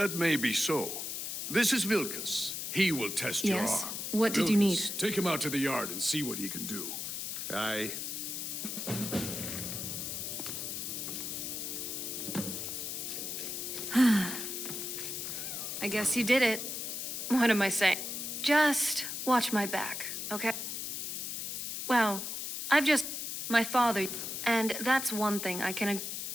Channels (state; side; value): noise; left; hiss, 4 dB below the sound